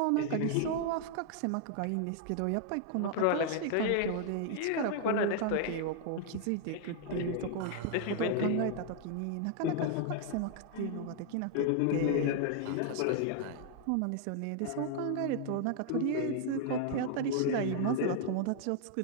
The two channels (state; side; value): different; both; correlation 0.00